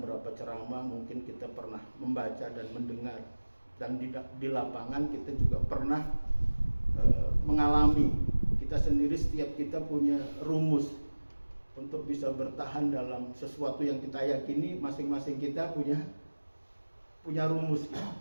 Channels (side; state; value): both; inverted; correlation -1.00